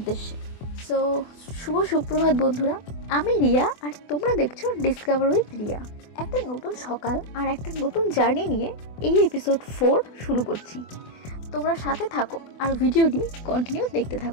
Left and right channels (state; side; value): late; right; 24 ms